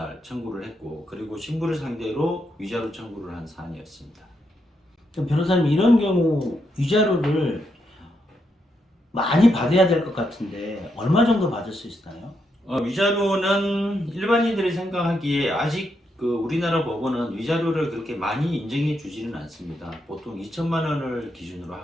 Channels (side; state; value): both; normal; correlation 0.81